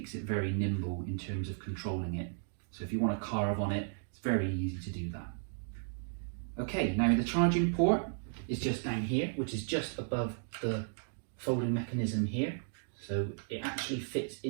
it very nimble in terms of controlling it. So if you want to carve on it, it's very easy to do that. Okay, now the charging port is just down here, which is just above the folding mechanism here. So it actually fits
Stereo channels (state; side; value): silent; left; digital silence